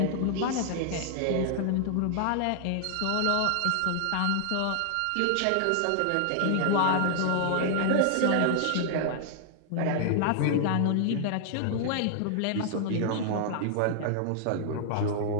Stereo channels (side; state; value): both; different; correlation 0.00